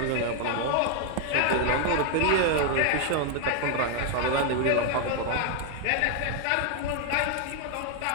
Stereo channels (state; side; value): different; both; correlation 0.00